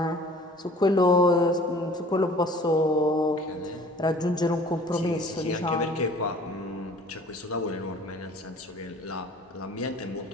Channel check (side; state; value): both; normal; correlation 0.49